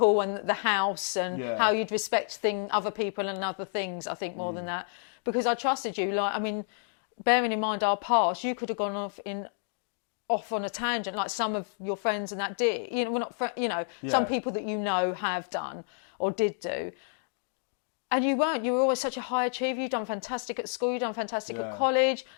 and the house and how you'd respect other people and other things. I think more than that because I trusted you. Like, I mean, bearing in mind our past, you could have gone off on a tangent like some of your friends and that did. You know, we're not some people that you know have done or did do. And you weren't. You were always such a high achiever. You've done fantastic at school. You've done fantastic at college.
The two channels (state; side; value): silent; right; digital silence